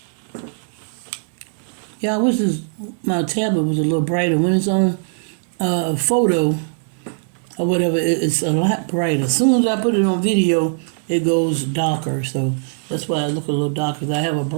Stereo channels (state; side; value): silent; left; 66 dB below the other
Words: Yeah, I wish my tablet was a little brighter. When it's on photo or whatever, it's a lot brighter. As soon as I put it on video, it goes darker. So that's why I look a little darker, because I have a